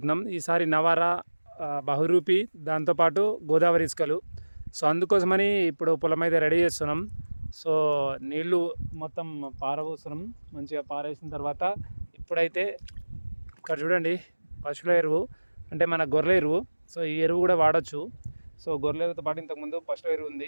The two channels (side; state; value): both; inverted; correlation -1.00